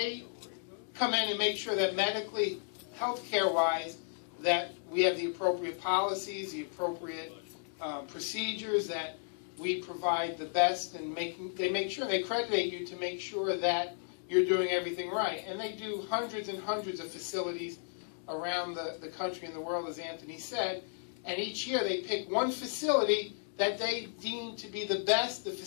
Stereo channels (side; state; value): right; silent; digital silence